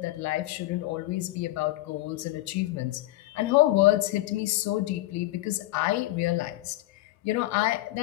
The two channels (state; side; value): quieter; right; 17.4 dB